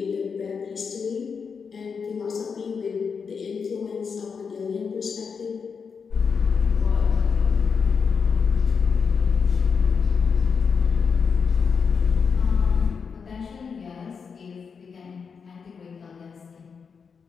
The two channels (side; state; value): right; quieter; 5.9 dB